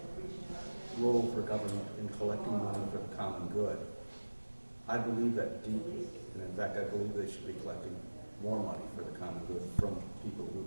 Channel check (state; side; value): inverted; both; correlation -1.00